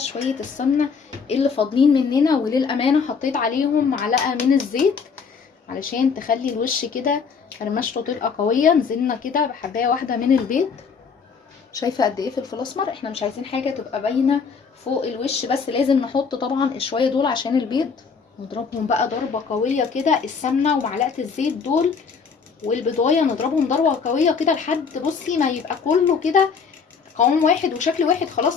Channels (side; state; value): right; quieter; 5.7 dB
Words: شويه السمنه اللي فاضلين مننا، وللامانه حطيت عليهم معلقه من الزيت علشان تخلي الوش كده فرمشته تبقى قويه. نزلنا كده بحبايه واحده من البيض. شايفه قد ايه فلفل اسمر؟ احنا مش عايزين حاجه تبقى باينه فوق الوش، بس لازم نحط طبعا شويه دول عشان البيض. نضربهم بقى ضربه قويه كده، السمنه ومعلقه الزيت دول والبيضايه نضربهم ضربه قويه كده لحد بصي ما يبقى كله كده قوام واحد وشكل واحد،